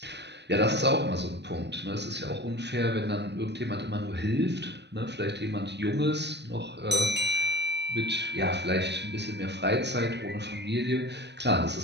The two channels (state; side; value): late; left; 0.50 ms